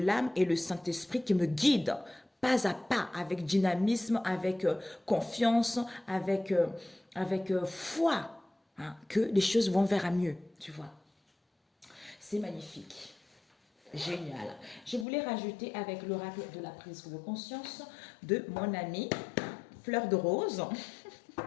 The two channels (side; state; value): right; drops out; at 15.1 s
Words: et le Saint-Esprit qui me guide pas à pas, avec dynamisme, avec confiance, avec foi, que les choses vont vers à mieux, tu vois. C'est magnifique. Génial. Je voulais rajouter avec l'oracle de la prise de conscience de mon amie Fleur de Rose.